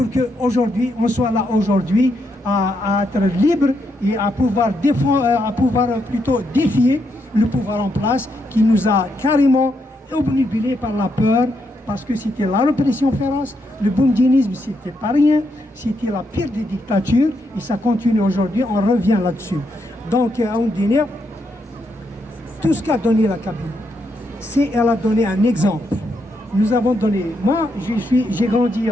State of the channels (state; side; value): normal; both; correlation 0.79